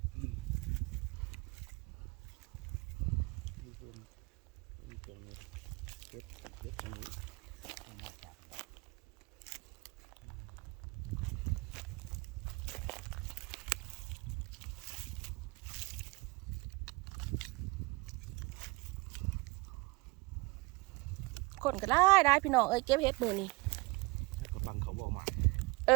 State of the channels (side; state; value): left; quieter; 25.0 dB